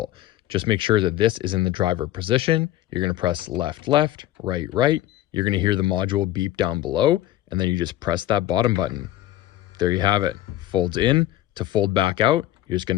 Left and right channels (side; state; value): right; quieter; 13.9 dB